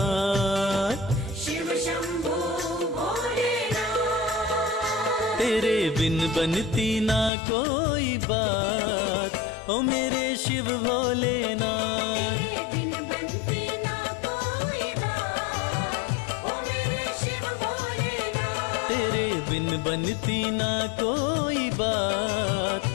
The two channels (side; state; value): right; drops out; at 7.3 s